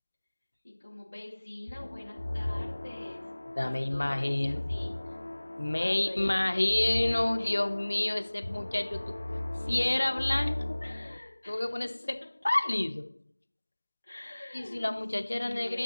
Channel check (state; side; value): inverted; both; correlation -1.00